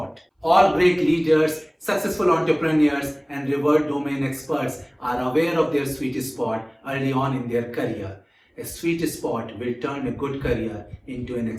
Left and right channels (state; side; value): identical; both; correlation 1.00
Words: All great leaders, successful entrepreneurs and revered domain experts are aware of their sweet spot early on in their career. A sweet spot will turn a good career into an